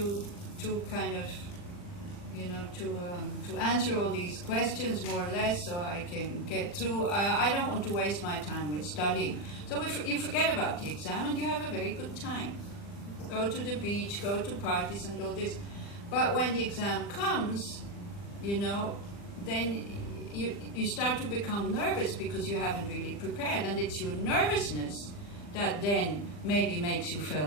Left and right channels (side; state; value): right; late; 40 ms